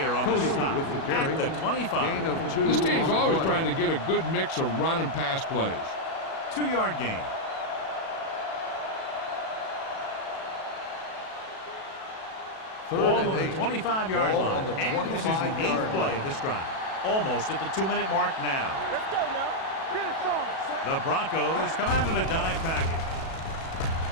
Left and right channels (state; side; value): late; right; 37 ms